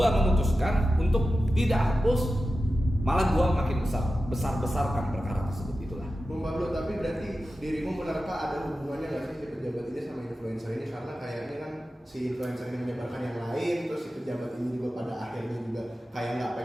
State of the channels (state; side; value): normal; both; correlation 0.93